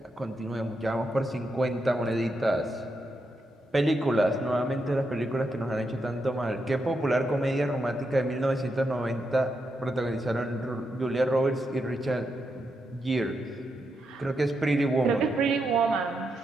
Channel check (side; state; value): both; normal; correlation 0.83